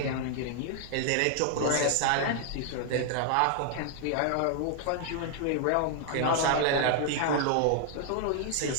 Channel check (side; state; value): both; different; correlation 0.00